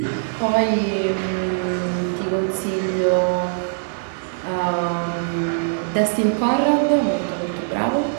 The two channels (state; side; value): silent; left; 64 dB below the other